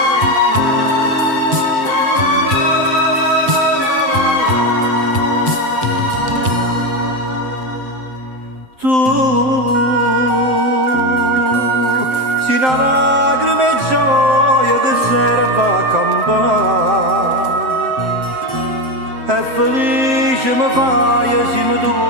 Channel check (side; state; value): left; late; 7.7 ms